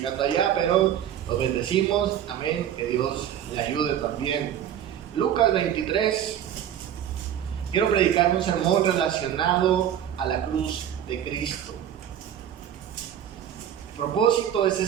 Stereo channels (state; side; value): quieter; left; 10.2 dB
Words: allá, pero los bendecimos. Amén. Que Dios le ayude también. Lucas 23. Quiero predicar un sermón relacionado a la cruz de Cristo. El propósito de ese